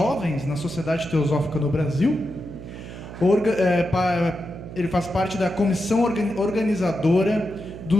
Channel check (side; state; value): right; noise; hum, 12 dB below the sound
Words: na Sociedade Teosófica no Brasil. Ele faz parte da comissão organizadora